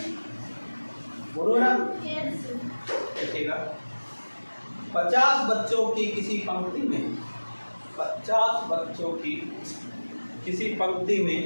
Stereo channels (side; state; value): both; inverted; correlation -1.00